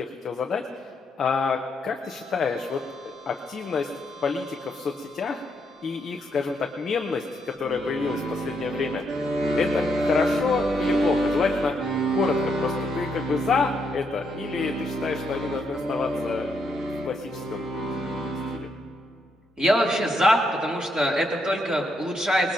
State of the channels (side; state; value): both; normal; correlation 0.77